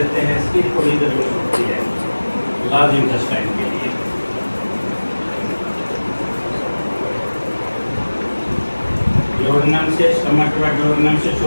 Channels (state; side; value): inverted; both; correlation -1.00